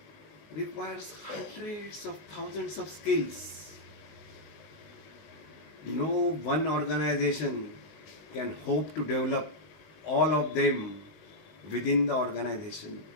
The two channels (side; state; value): right; late; 19 ms